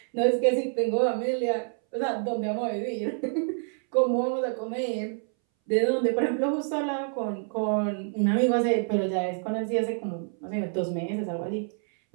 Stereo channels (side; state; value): left; silent; 60 dB below the other